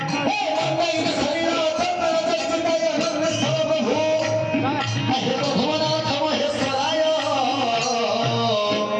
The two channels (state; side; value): identical; both; correlation 1.00